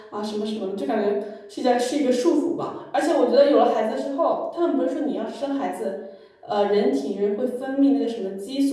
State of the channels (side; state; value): both; identical; correlation 1.00